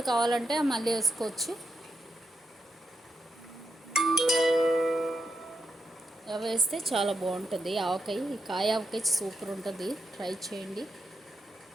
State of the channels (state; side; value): normal; both; correlation 0.84